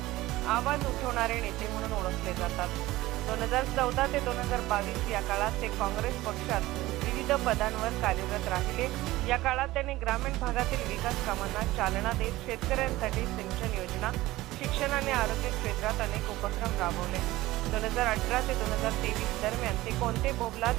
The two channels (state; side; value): quieter; left; 17.8 dB